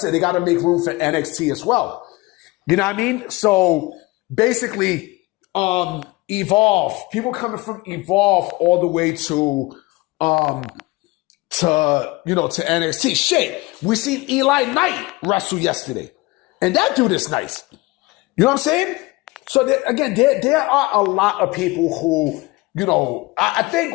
they got to make room for NXT as well. You know what I mean? So basically, Evolve, people coming from Evolve all the way to NXT. Shit, we seen Eli Knight wrestle yesterday. And that dude is nice. You know what I'm saying? So there are a lot of people who, I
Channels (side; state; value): right; quieter; 22.2 dB